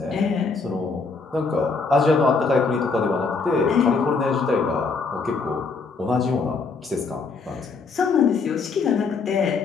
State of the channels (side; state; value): right; quieter; 4.5 dB